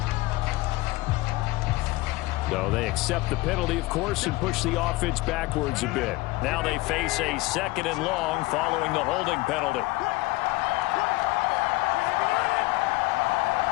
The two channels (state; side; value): quieter; right; 20.7 dB